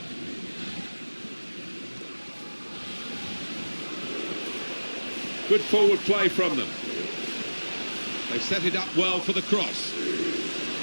Good forward play from them. They set it up well for the cross.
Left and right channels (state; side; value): inverted; both; correlation -1.00